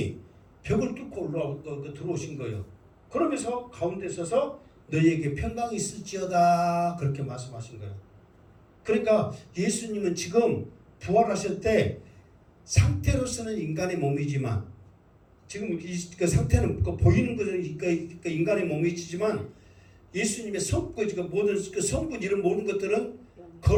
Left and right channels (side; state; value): both; identical; correlation 1.00